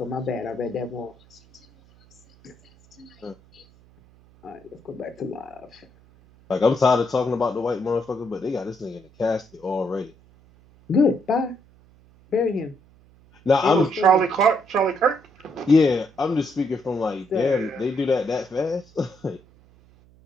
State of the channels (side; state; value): right; noise; hum, 28 dB below the sound